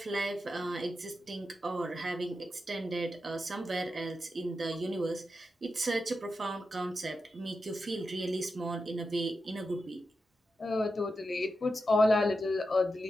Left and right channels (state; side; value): normal; both; correlation 0.89